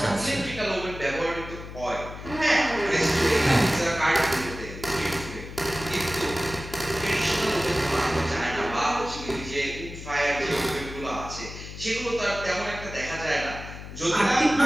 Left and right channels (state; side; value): noise; left; hum, 12 dB below the sound